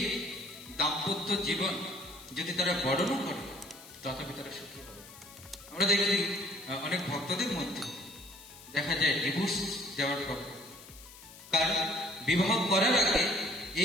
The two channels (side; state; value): left; noise; hiss, 18 dB below the sound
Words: দাম্পত্য জীবন যদি তারা বর্ণনা করে, তথাপি তারা সুখী হবে। আমরা দেখি অনেক ভক্তদের মধ্যে দেখা যায় ডিভোর্স দেওয়ার পর, কারণ বিবাহ করার আগে